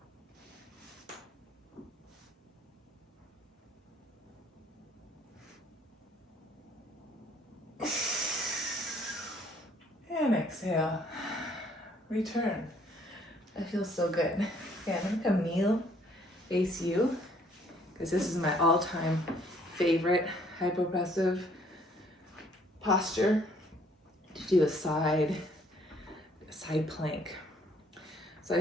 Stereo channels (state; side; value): normal; both; correlation 0.62